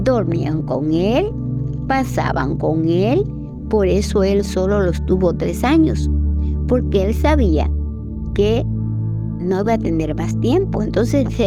con Él, pasaban con Él. Por eso Él solo los tuvo 3 años, porque Él sabía que no iba a tener más tiempo. Entonces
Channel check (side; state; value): both; identical; correlation 1.00